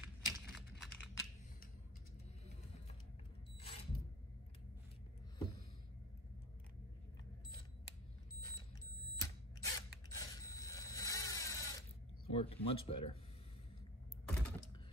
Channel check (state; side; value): normal; both; correlation 0.34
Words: Worked much better.